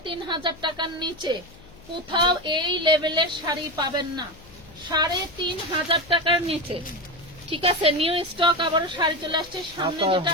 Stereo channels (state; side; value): noise; left; hum, 22 dB below the sound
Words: টাকার নিচে কোথাও এই লেভেলের শাড়ি পাবেন না। 3500 টাকার নিচে, ঠিক আছে? নিউ স্টক আবারও শাড়ি চলে আসছে। সামনে যেটা